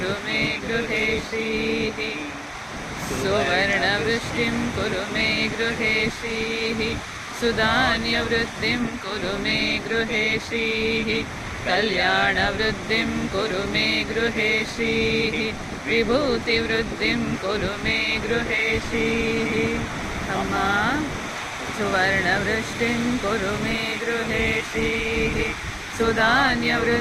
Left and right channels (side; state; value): both; identical; correlation 1.00